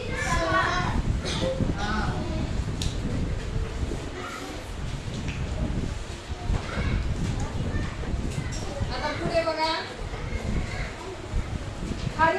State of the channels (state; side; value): identical; both; correlation 1.00